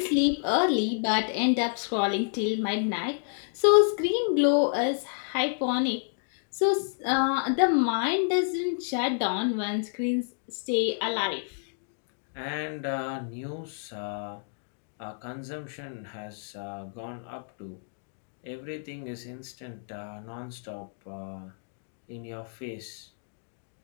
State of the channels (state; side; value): silent; right; digital silence